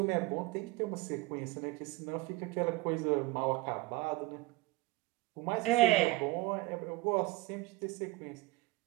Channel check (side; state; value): left; quieter; 20.6 dB